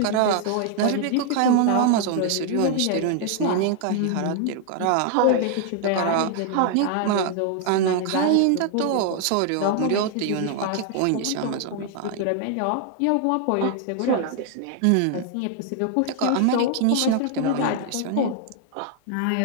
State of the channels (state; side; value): different; both; correlation 0.00